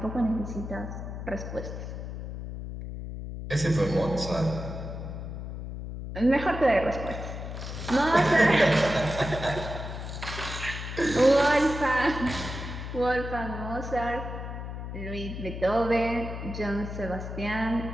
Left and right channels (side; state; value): left; noise; hum, 7 dB below the sound